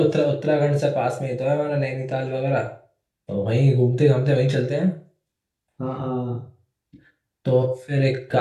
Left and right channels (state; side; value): identical; both; correlation 1.00